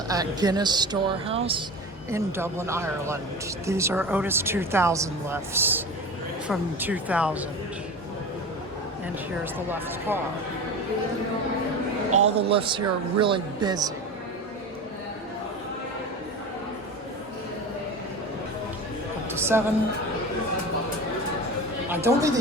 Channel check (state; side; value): normal; both; correlation 0.30